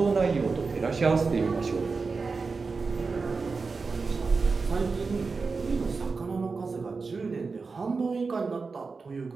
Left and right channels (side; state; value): left; quieter; 4.5 dB